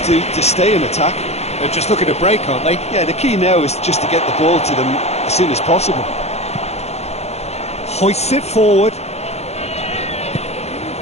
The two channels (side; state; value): right; late; 0.31 ms